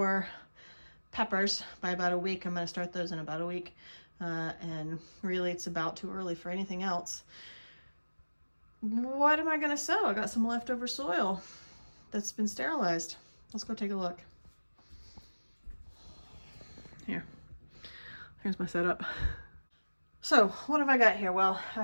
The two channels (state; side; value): inverted; both; correlation -1.00